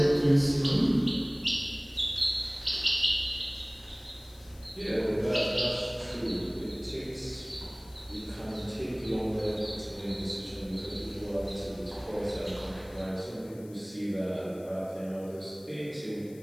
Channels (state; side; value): noise; left; hiss, 24 dB below the sound